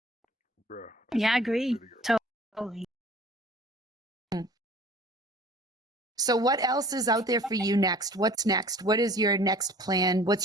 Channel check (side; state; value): both; normal; correlation 0.48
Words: Yeah, I agree. Totally. So what else is out there for you next? What's next? What is your next plan?